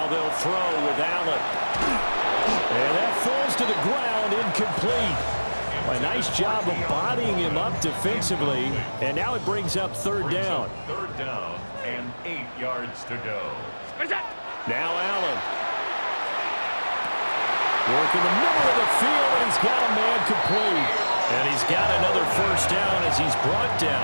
they'll throw with Allen. And that falls to the ground, incomplete. A nice job of bodying him up defensively. And now it brings up third down. Third down and 8 yards to go. Now Allen. Working the middle of the field, and he's got a man complete. And he's got another first down as he's brought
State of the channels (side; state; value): both; inverted; correlation -1.00